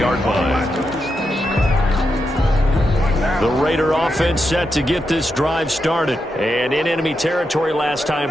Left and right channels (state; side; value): normal; both; correlation 0.86